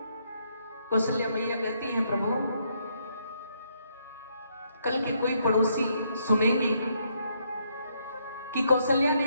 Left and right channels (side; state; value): both; inverted; correlation -0.73